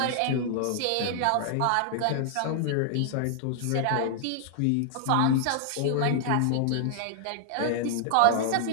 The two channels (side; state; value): both; different; correlation -0.01